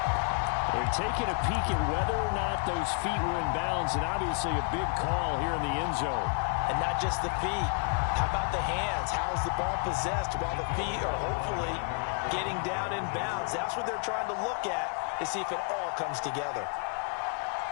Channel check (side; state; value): right; quieter; 39.5 dB